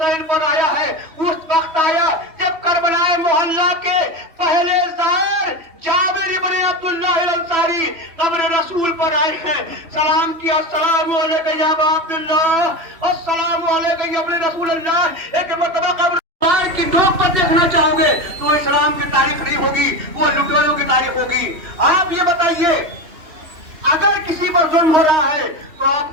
پر آیا ہے۔ اس وقت آیا جب کربلا محلہ کے پہلے زائر جابر ابن عبداللہ الانصاری قبر رسول پر آئے ہیں، سلام کیا، السلام علیکم یا ابا عبداللہ، السلام علیکم یا ابن رسول اللہ۔ ایک مرتبہ قبر کی ڈوب پر دیکھنا چاہو گے تو اسلام کی تاریخ نہیں ہوگی، وہ لٹوروں کی تاریخ ہوگی۔ آپ یہ بتائیے اگر کسی پر ظلم ہو رہا ہے تو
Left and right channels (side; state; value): left; late; 3.2 ms